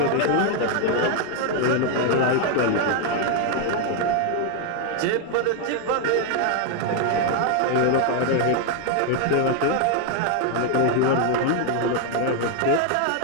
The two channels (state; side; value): different; both; correlation 0.00